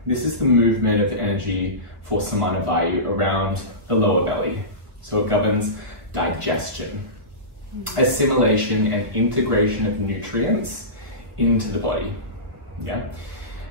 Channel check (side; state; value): left; late; 1.3 ms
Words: this is the movement of energy for Somana Vayu around the lower belly. So it governs digestion, assimilation and integration of nutrients into the body. Yeah.